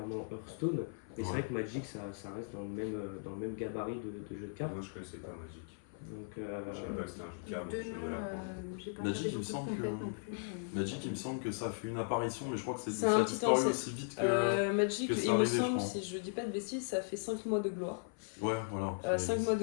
Hearthstone, mais c'est vrai que Magic ça reste dans le même gabarit de jeu de cartes. Moi je connaissais pas Magic. Donc, Je savais pas que c'était un jeu de cartes, donc je venais l'apprendre. Magic, il me semble que ça a fait une apparition, mais je crois que C'est ça un a petit disparu temps, aussi vite que. Magic, que ça il me arrivait, je semble, crois. si je dis pas de bêtises, ça a fait 5 mois de gloire. Ouais, voilà. 5 mois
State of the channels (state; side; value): silent; right; 53 dB below the other